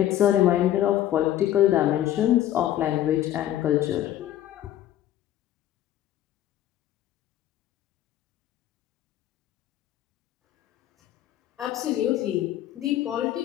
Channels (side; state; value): right; quieter; 12.6 dB